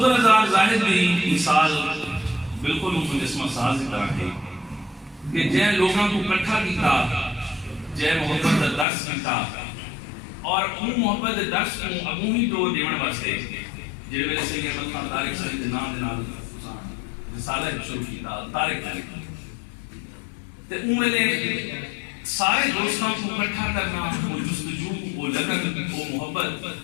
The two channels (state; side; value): drops out; right; at 8.8 s